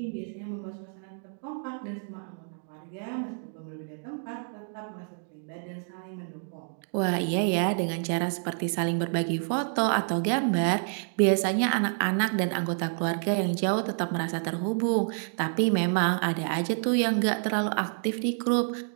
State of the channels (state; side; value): silent; left; digital silence